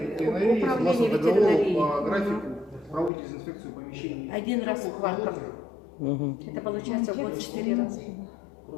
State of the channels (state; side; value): drops out; right; at 3.1 s